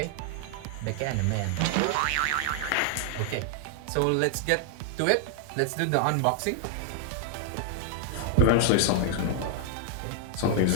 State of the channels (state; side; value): different; both; correlation 0.00